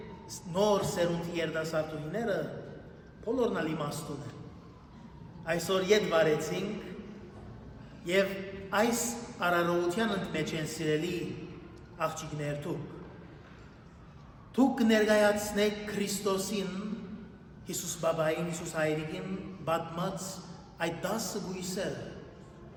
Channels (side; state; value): both; identical; correlation 1.00